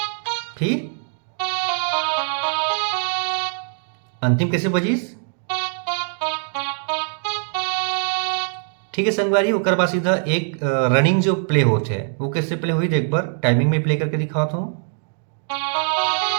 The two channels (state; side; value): silent; left; 57 dB below the other